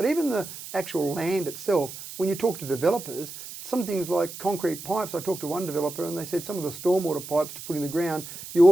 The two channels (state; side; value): noise; right; hiss, 12 dB below the sound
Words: even the actual land itself, when you talk to developers, some things like concrete pipes, I talked to one developer and they said some of the stormwater pipes to put in the ground, you